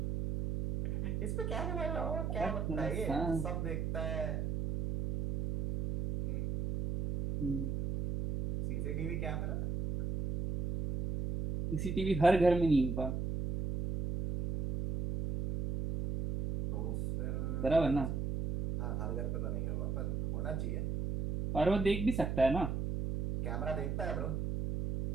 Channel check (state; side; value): noise; right; hum, 1 dB below the sound